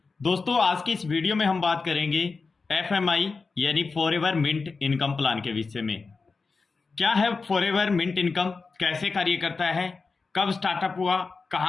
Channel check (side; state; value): right; quieter; 4.4 dB